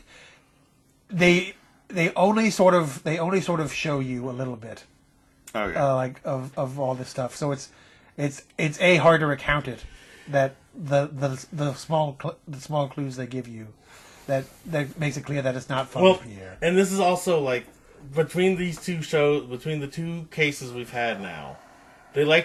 They only sort of show you a little bit, like of all this stuff. So it's hard to recount it, that the small clues they give you, that makes it clear that it's not Father Pierre. And this is also like between the two cases we've had now, they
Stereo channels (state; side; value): identical; both; correlation 1.00